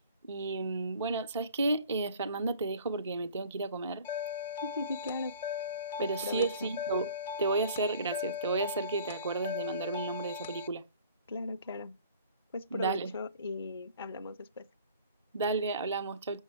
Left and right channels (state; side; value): inverted; both; correlation -0.48